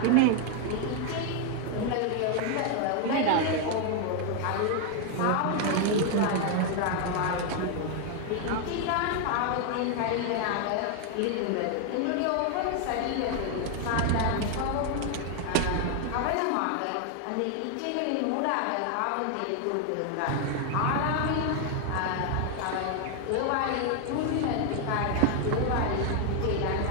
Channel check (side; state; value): both; different; correlation 0.01